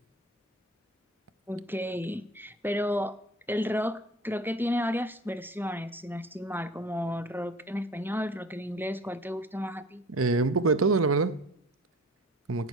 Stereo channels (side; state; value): both; normal; correlation 0.42